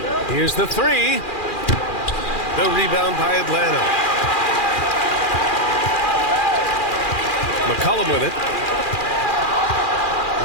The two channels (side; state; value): right; late; 2.4 ms